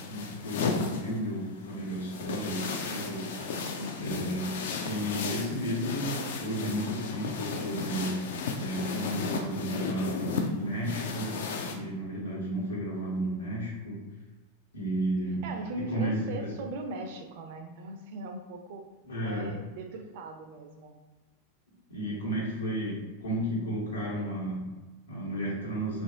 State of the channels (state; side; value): normal; both; correlation 0.09